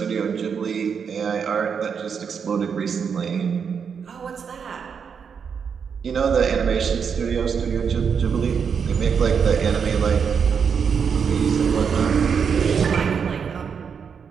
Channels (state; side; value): quieter; left; 6.6 dB